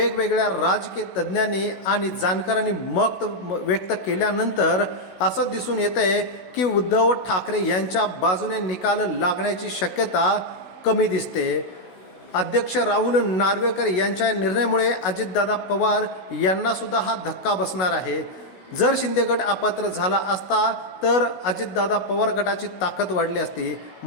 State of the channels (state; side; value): late; right; 16 ms